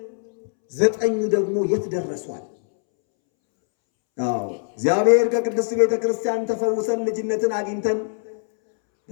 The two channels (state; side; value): silent; right; 64 dB below the other